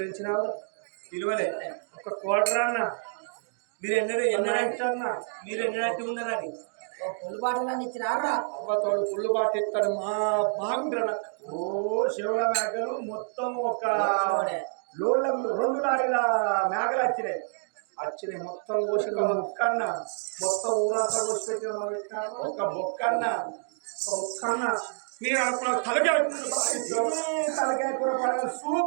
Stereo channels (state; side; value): silent; left; digital silence